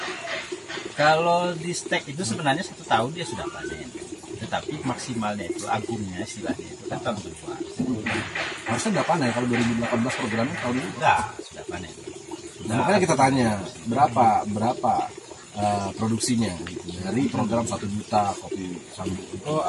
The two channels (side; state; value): both; identical; correlation 1.00